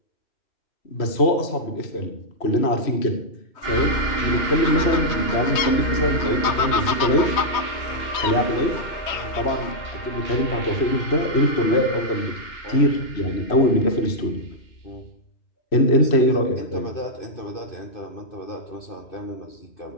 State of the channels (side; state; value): right; late; 3.2 ms